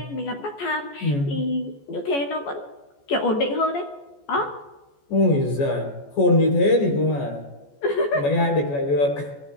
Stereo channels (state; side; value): late; right; 14 ms